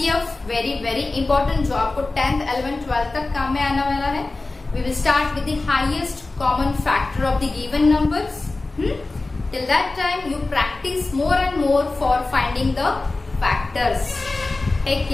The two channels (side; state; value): right; quieter; 3.3 dB